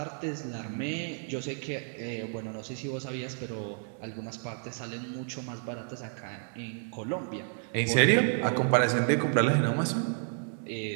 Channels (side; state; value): left; silent; 57 dB below the other